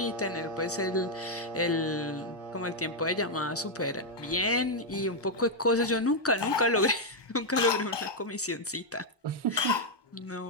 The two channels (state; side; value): normal; both; correlation -0.01